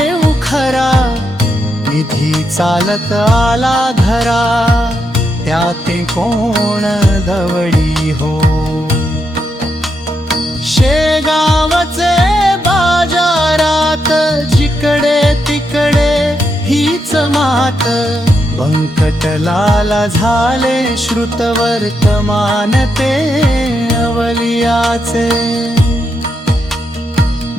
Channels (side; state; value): both; normal; correlation 0.82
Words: खरा निधी चालत आला घरा त्याते कोण दवडी हो शेगावचे बाजारात जिकडे तिकडे हीच मात बंकटलाला झाले श्रुत वर्तमान ते अवलियाचे